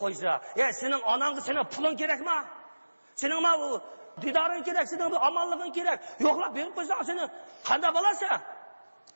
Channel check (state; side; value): inverted; both; correlation -1.00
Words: qo'ysa. Sening onangga sening puling kerakmi? Sening ma bu didoring kerak, sening bu omonliging kerak. Yo'qlab berib qo'ysang, seni qanday bo'lasa?